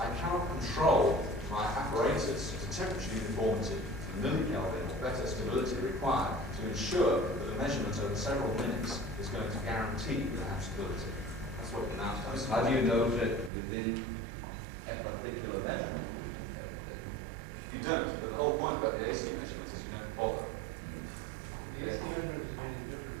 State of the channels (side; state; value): left; drops out; at 13.5 s